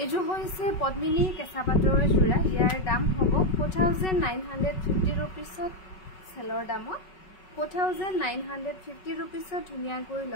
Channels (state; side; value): late; right; 5.3 ms